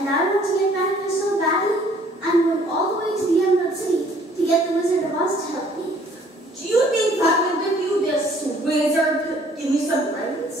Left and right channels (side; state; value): both; normal; correlation 0.59